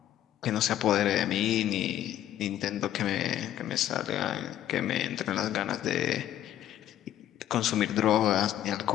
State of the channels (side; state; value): right; quieter; 12.0 dB